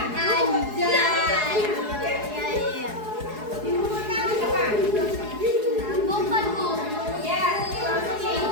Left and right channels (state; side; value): late; left; 4.7 ms